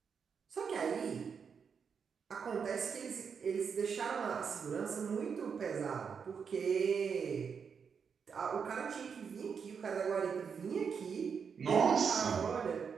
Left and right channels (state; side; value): quieter; left; 6.4 dB